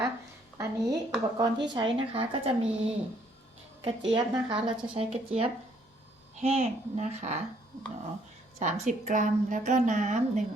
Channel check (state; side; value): normal; both; correlation 0.66